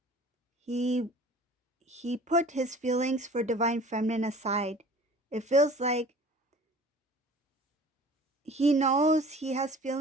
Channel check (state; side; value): normal; both; correlation 0.46